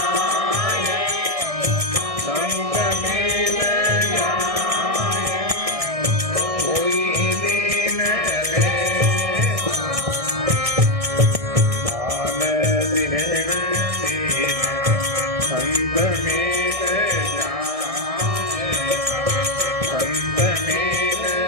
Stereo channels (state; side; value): late; left; 1.6 ms